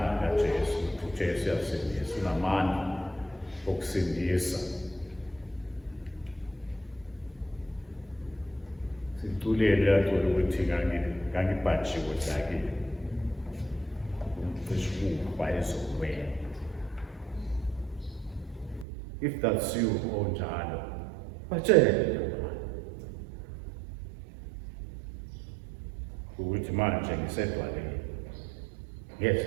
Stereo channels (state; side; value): drops out; left; at 18.9 s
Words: kaJesu, uJesu uyasindisa, unamandla okusindisa. Situlele yacula ukuthi ngangibhajiwe sakile. Umcishuba ezokwena. If that's you, onjalo, batshele ukuthi manje ngisedwaleni.